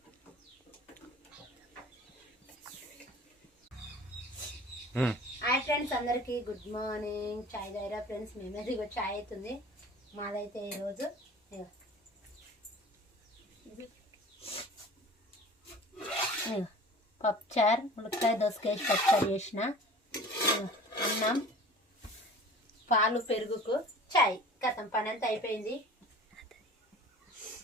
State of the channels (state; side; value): normal; both; correlation 0.43